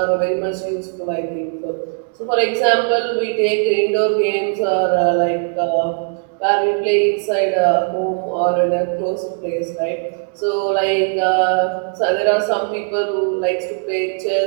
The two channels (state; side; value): silent; left; 60 dB below the other